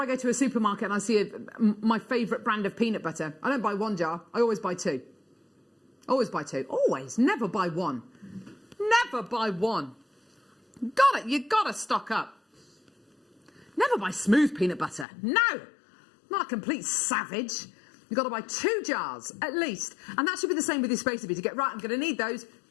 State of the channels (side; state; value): right; drops out; at 15.1 s